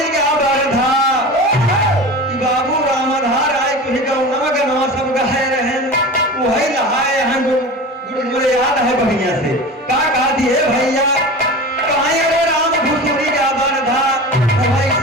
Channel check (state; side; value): normal; both; correlation 0.33